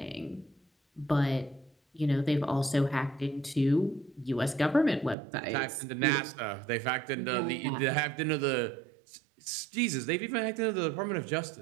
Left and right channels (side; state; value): left; drops out; at 5.2 s